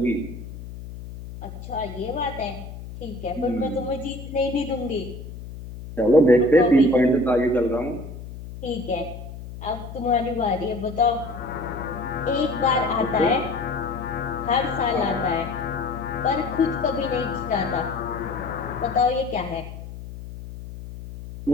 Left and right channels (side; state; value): left; noise; hum, 12 dB below the sound